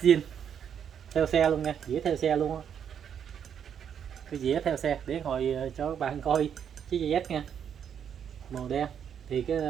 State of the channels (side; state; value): left; quieter; 8.3 dB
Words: zin theo xe luôn nha, dĩa theo xe luôn á. Cái dĩa theo xe để hồi cho các bạn coi chiếc GS nha, màu đen. Thì cái